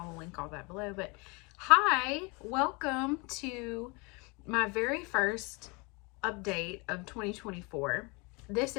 will link all that below. But hi, welcome to my very first update of 2024. This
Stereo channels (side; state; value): right; quieter; 29.1 dB